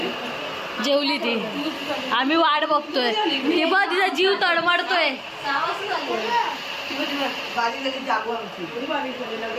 जेवली ती. आम्ही वाट बघतोय. ती बघ तिचा जीव तडमडतोय.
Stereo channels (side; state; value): both; identical; correlation 1.00